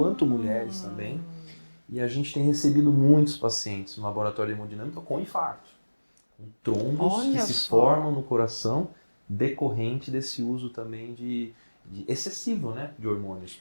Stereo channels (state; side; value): inverted; both; correlation -1.00